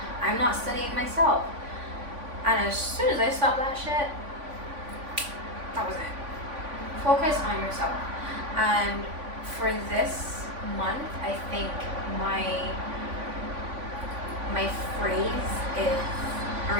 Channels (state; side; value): late; left; 3.5 ms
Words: I'm not studying myself. And as soon as I stopped that shit, that was it. Focus on yourself. And for this month, I think my phrase is a